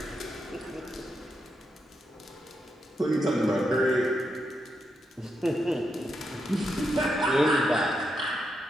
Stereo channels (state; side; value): normal; both; correlation 0.83